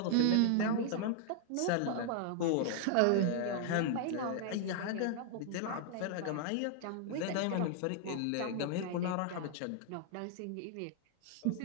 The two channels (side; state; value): both; different; correlation -0.01